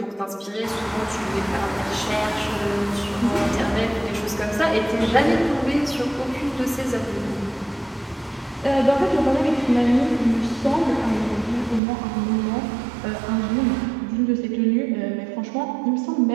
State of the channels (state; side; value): drops out; left; at 11.8 s